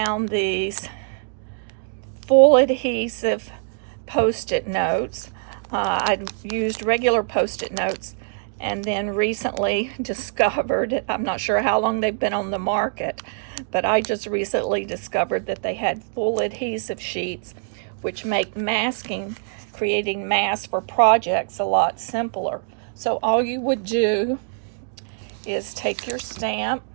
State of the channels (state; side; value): silent; left; digital silence